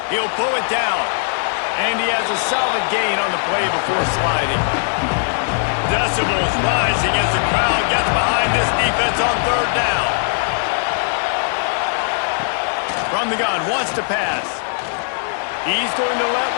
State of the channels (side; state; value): right; silent; 61 dB below the other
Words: He'll pull it down. And he has a solid gain on the play before sliding. Decibels rising as the crowd gets behind this defense on 3rd down. From the gun, wants to pass. He's going to let